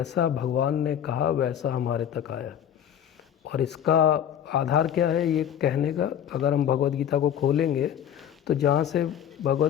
भगवान ने कहा वैसा हमारे तक आया। और इसका आधार क्या है ये कहने का, अगर हम भगवद गीता को खोलेंगे तो जहाँ से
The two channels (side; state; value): right; quieter; 9.7 dB